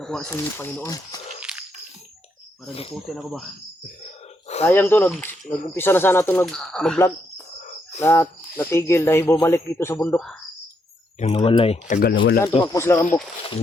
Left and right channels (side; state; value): both; normal; correlation 0.77